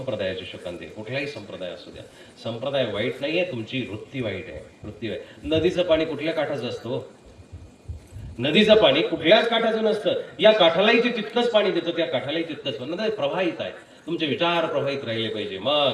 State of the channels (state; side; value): identical; both; correlation 1.00